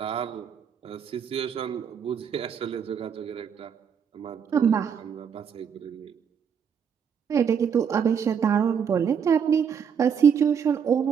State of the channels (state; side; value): quieter; left; 7.3 dB